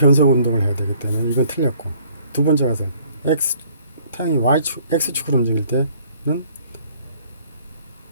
운동을 해야 되기 때문에 이건 틀렸고, 두 번째 가설 태양이 X축으로 움직일 때는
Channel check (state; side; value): inverted; both; correlation -0.59